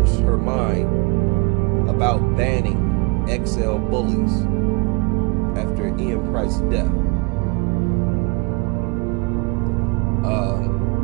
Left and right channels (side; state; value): left; quieter; 28.9 dB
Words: her mind about banning XL bullies after Ian Price's death.